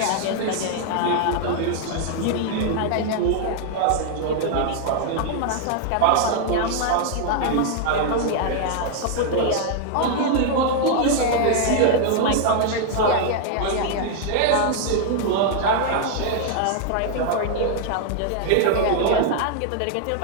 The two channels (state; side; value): different; both; correlation 0.00